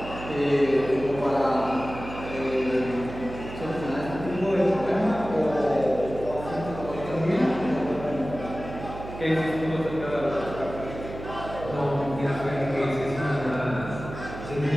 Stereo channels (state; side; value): noise; right; hum, 11 dB below the sound